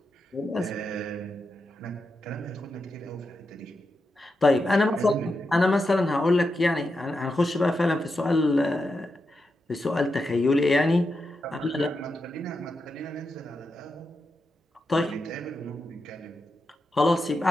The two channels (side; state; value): both; normal; correlation 0.87